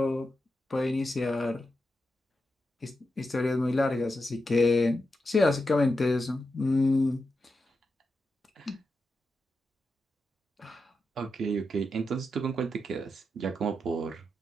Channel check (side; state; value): both; normal; correlation 0.88